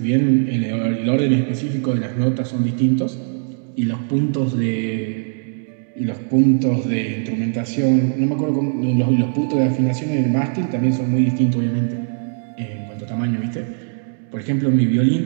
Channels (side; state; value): left; silent; digital silence